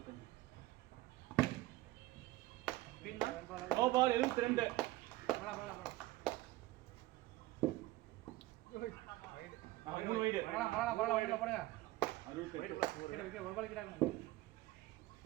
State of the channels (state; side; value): quieter; left; 17.9 dB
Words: No ball 72. மூணு வைடு போடுங்க. 68. ஒரு பால் கிட்டாங்க.